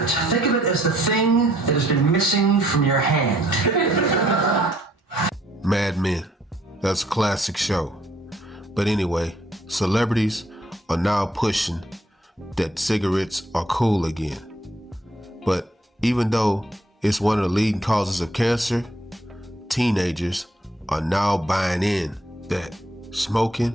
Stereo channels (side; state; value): both; normal; correlation 0.65